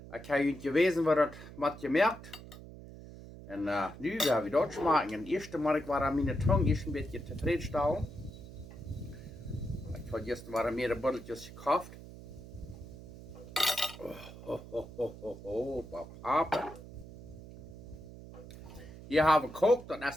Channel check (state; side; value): noise; right; hum, 15 dB below the sound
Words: Ik heb je geweten wat dat wat je merkt. En nu gaan we dat smaken. En eerste maar ik war aan mijn tong is een beetje tevreden. Ik had gisteren waren meerdere botteltjes gekauft. Papa. Hier hebben we gekookt, dat